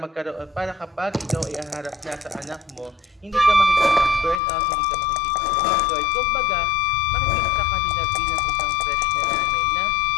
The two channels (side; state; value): right; drops out; at 4.4 s